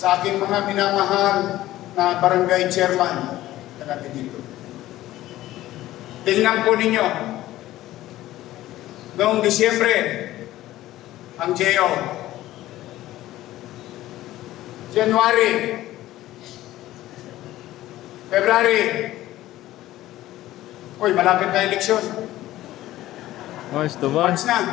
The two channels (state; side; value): quieter; right; 15.2 dB